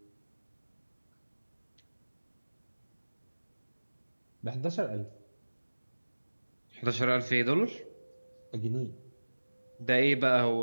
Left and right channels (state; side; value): inverted; both; correlation -1.00